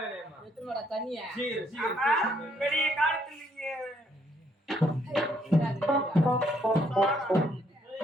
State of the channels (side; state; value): both; normal; correlation 0.70